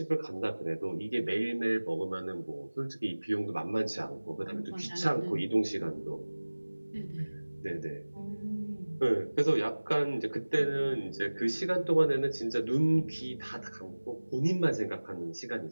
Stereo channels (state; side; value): inverted; both; correlation -1.00